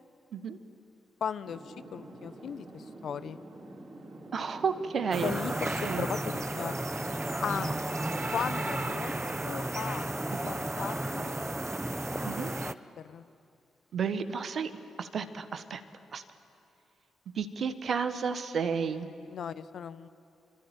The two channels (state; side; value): normal; both; correlation 0.81